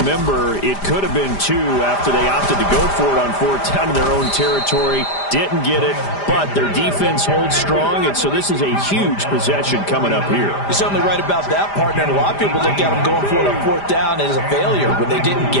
it could have been 2 after they opted to go for it on 4th down in their own territory. Didn't get it, but their defense holds strong, and so this is a huge possession coming up here. You're certainly right about that, partner. And a lot of people look at them going for it on 4th down as a failure when they didn't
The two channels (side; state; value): right; late; 5.0 ms